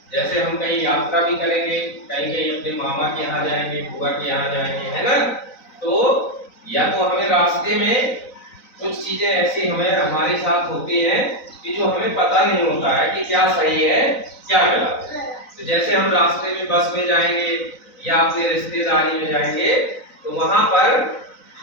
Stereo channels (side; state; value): right; late; 3.9 ms